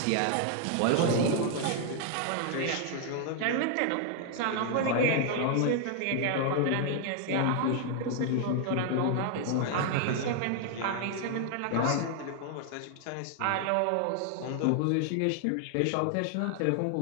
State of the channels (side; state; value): both; different; correlation 0.00